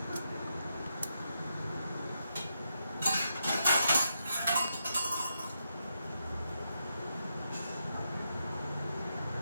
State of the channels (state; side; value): inverted; both; correlation -0.83